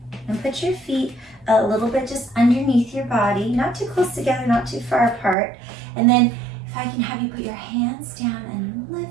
and put your feet a little bit just underneath your body, not too close together, not too far apart. And then if I can have you put your hands down and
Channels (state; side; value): drops out; left; at 5.4 s